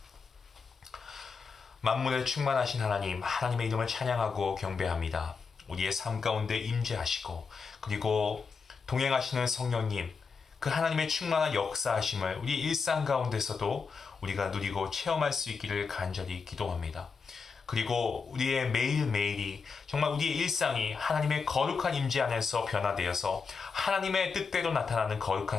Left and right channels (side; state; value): right; quieter; 5.2 dB